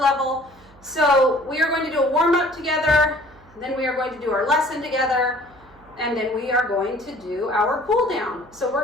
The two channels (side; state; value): right; noise; hum, 26 dB below the sound